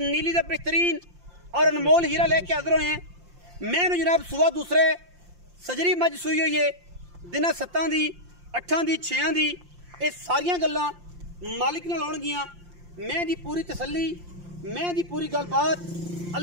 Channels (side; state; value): left; late; 5.7 ms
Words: नीली दा बेहतरीन और अनमोल हीरा लेके हाज़र होए हैं। मैं जनाब सुबह दूसरे सजरी मज सूई हुई है, दिनां 7 दी 8 दी 6 दी ये सारिया गल्लां मालिक नाल होणगियां। मैं दी पूरी तसल्ली, मैं दी पूरी गलबात